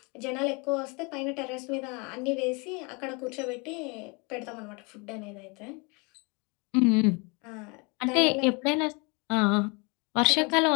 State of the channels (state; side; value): quieter; right; 30.8 dB